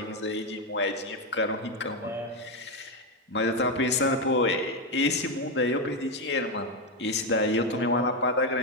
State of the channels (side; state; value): both; normal; correlation 0.07